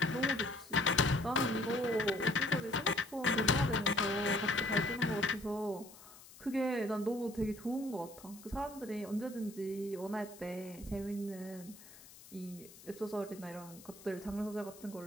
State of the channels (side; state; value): left; noise; hiss, 20 dB below the sound